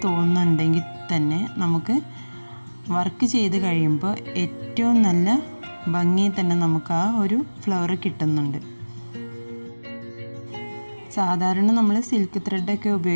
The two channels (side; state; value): both; inverted; correlation -1.00